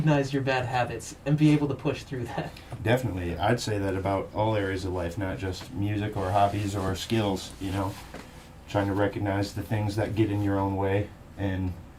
your bad habits and be able to push through that. Definitely. I'd say that about all areas of life, not just music or hobbies or skills, you know. Trying to recognize the things that get in your own way and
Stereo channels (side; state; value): both; identical; correlation 1.00